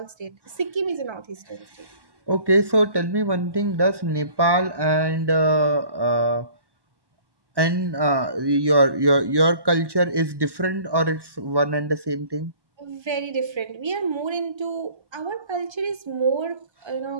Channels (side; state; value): left; late; 1.1 ms